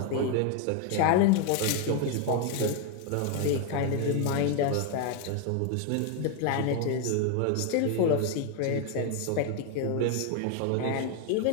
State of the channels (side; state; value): both; different; correlation 0.01